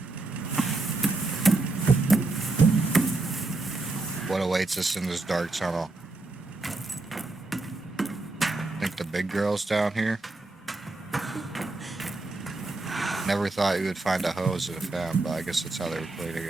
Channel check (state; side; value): quieter; left; 3.2 dB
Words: What awaits us in this dark tunnel? I think the big girl's down here. Never thought you would find a hose in a fan, but I guess that's how they were cleaning